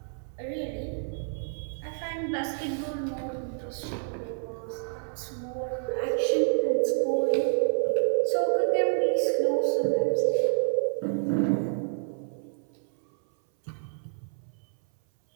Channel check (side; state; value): left; silent; 59 dB below the other